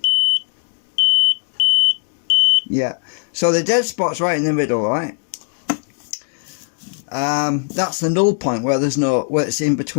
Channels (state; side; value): silent; right; digital silence